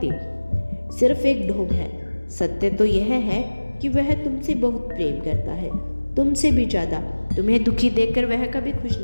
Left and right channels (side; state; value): both; inverted; correlation -1.00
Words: सिर्फ एक ढोंग है। सत्य तो यह है कि वह तुमसे बहुत प्रेम करता है, तुमसे भी ज़्यादा। तुम्हें दुखी देखकर वह कभी खुश